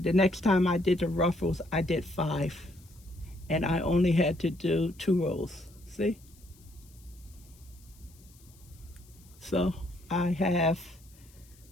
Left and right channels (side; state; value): left; noise; hiss, 27 dB below the sound